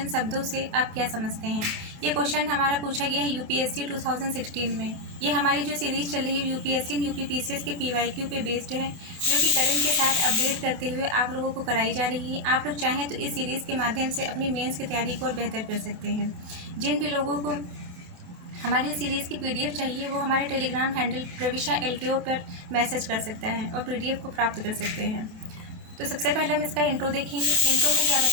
शब्दों से आप क्या समझते हैं। ये क्वेश्चन हमारा पूछा गया है यूपीएससी 2016 में। ये हमारी जो सीरीज़ चल रही है यूपीएससी यूपीपीसीएस के पीवाईक्यू पे बेस्ड है, जो कि करंट के साथ अपडेट करते हुए आप लोगों को कराई जा रही है। आप लोग चाहें तो इस सीरीज़ के माध्यम से अपनी मेंस की तैयारी को और बेहतर कर सकते हैं। जिन भी लोगों को हमारी सीरीज़ की पीडीएफ चाहिए, वो हमारे टेलीग्राम हैंडल प्रविशा एलकेओ पर मैसेज कर सकता है और पीडीएफ को प्राप्त कर सकते हैं। तो सबसे पहले हम इसका इंट्रो देखेंगे। इंट्रो में क्या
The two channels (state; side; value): late; left; 27 ms